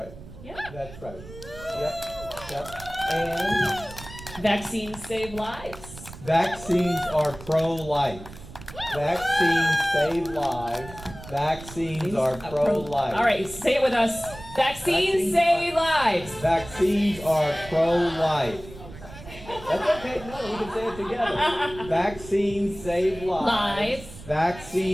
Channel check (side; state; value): right; noise; rumble, 16 dB below the sound